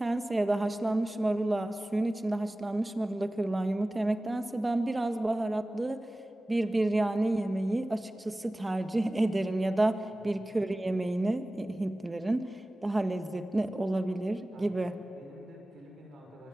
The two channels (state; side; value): normal; both; correlation 0.97